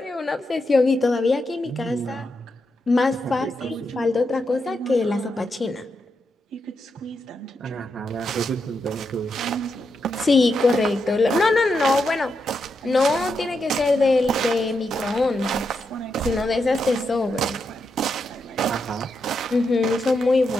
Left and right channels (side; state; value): both; normal; correlation 0.84